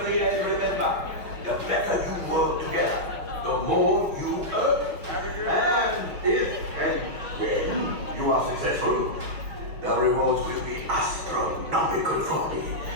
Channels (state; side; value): late; left; 5.9 ms